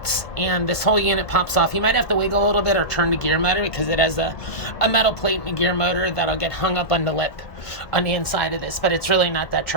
and this whole unit pops off. You might have to wiggle a little bit or turn the gear motor because it has a metal plate and a gear motor that'll get hung up on the lip on the inside of this, but it's really not that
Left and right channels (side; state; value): right; late; 1.5 ms